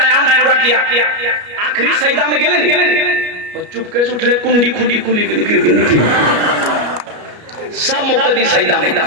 पूरा किया, आखिरी सजदा में गेले नहीं, चुपके से उठले, कुंडी खुंडी खुली सब मुक्तदी सजदा में।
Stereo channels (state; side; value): late; left; 33 ms